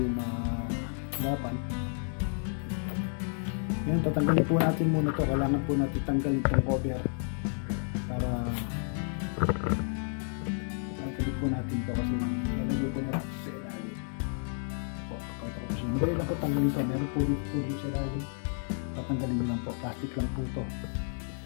mahirapan. Ngayon, tatanggalin po natin muna to. Kailangan po natin tanggalin itong cover para tanggalin po natin to kasi nalagay po natin sa ilalim. Po, pakita ko po siya. Dahil lang po tanggalin to. Meron po dito sa ilalim. Tatanggalin nyo lang po. Plastic lang po to.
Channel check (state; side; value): silent; right; 57 dB below the other